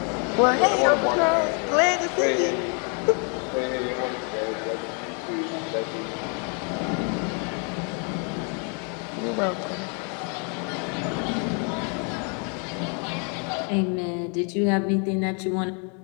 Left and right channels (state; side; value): quieter; right; 37.7 dB